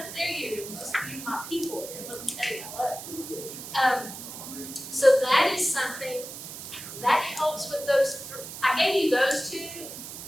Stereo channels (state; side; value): noise; right; hiss, 10 dB below the sound